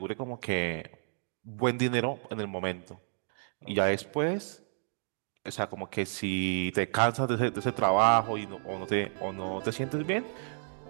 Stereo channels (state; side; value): silent; left; digital silence